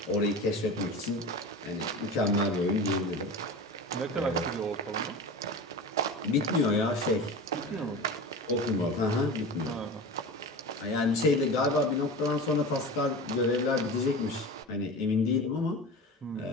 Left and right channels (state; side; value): normal; both; correlation 0.31